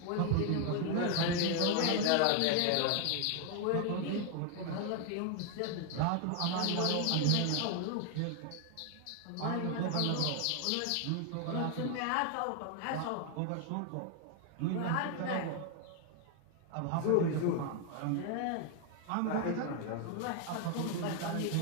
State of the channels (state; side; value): different; both; correlation 0.00